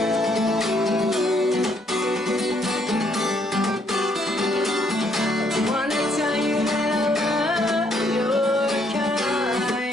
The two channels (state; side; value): normal; both; correlation 0.70